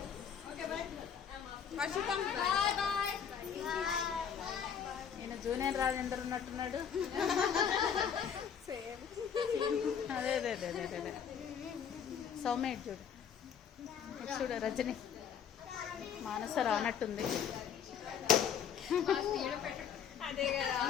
నేను జూనియర్ రాజేందర్ ఉన్నట్టున్నాడు. అదే అదే అదే అదే అదే సౌమ్య చూడు, చూడు రజని మానస రానట్టుంది.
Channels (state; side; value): quieter; right; 7.9 dB